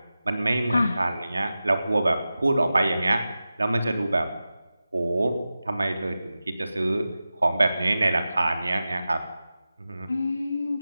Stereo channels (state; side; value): inverted; both; correlation -0.94